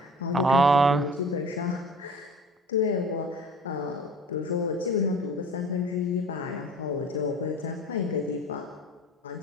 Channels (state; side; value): normal; both; correlation 0.42